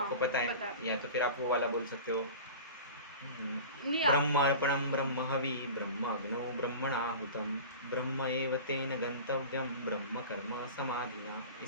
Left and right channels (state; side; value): inverted; both; correlation -0.35